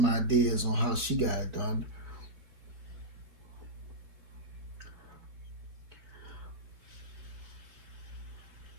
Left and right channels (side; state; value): left; late; 4.0 ms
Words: ideas on how she got it done.